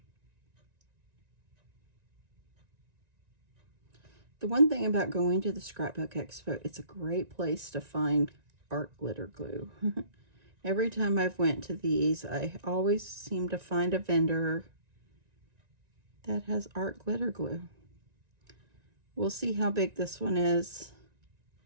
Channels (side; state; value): left; late; 1.9 ms